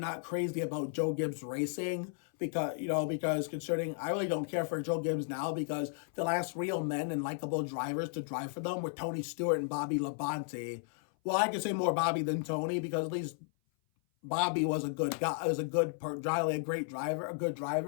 crazy about Joe Gibbs racing because considering I really don't care for Joe Gibbs now because the last real men and likable drivers to drive for them were Tony Stewart and Bobby Labonte. Well, I could say more Bobby than Tony because at least Bobby was a good guy. Was a good a great driver, a good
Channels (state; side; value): silent; right; 55 dB below the other